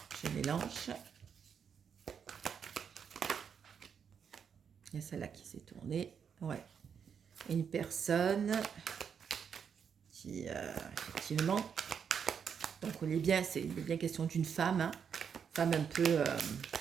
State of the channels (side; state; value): left; quieter; 7.2 dB